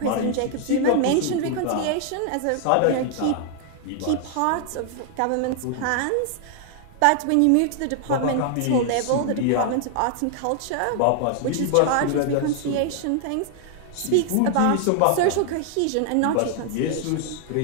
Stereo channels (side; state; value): both; different; correlation 0.00